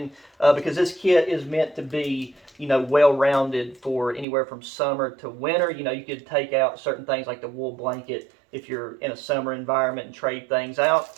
because this kit is meant to be well-rounded for anywhere from summer to winter. You could take out certain things like the wool blanket if you're in a summer environment and trade things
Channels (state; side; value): drops out; left; at 4.2 s